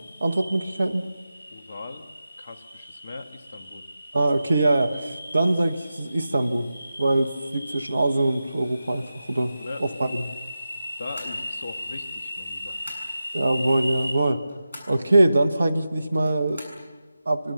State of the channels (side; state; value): both; inverted; correlation -0.92